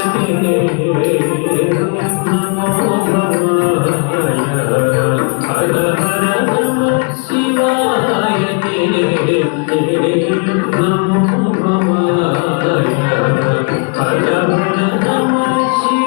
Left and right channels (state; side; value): quieter; right; 35.4 dB